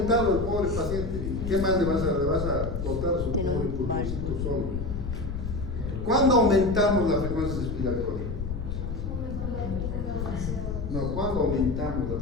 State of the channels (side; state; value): left; noise; rumble, 4 dB below the sound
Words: el pobre paciente. ¿Qué más le vas a cortar a su pobre pulmoncito solo? ¿Cuándo aumentamos la frecuencia respiratoria? No, ¿cuándo aumentamos la